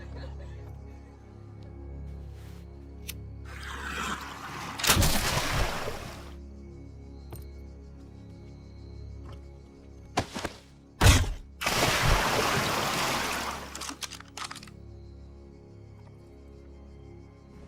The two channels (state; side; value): identical; both; correlation 1.00